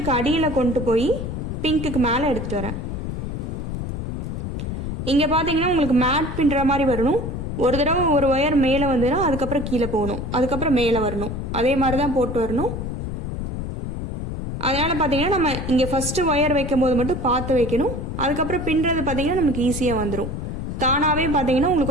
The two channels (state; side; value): noise; left; rumble, 5 dB below the sound